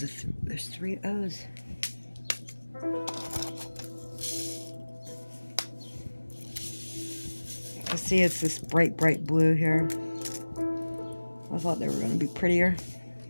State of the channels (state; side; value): inverted; both; correlation -1.00